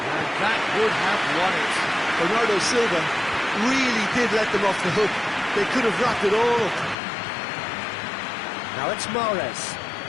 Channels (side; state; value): right; drops out; at 7.0 s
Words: And that would have won it. Bernardo Silva really did let them off the hook. They could have wrapped it all up. Now it's Mahrez.